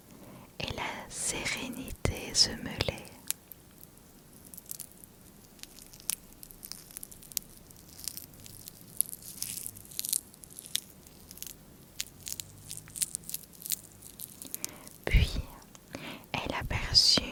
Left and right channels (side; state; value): both; identical; correlation 1.00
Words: et la sérénité se mêlaient. Puis, elle aperçut